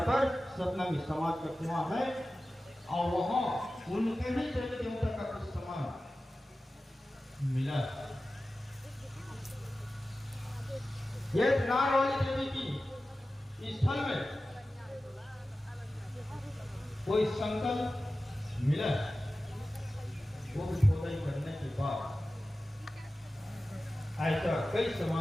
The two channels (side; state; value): both; normal; correlation 0.95